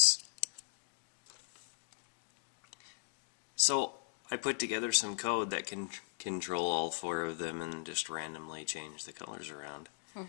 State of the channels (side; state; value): right; silent; digital silence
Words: So I put together some code that can control all 4 of them and just randomly change the colors around.